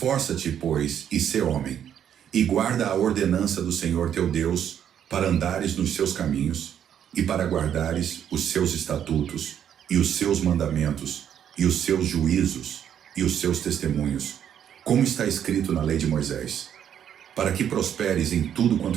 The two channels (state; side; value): quieter; left; 9.4 dB